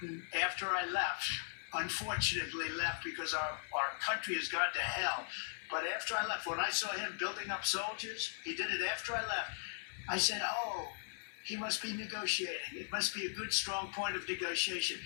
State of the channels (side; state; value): right; silent; 52 dB below the other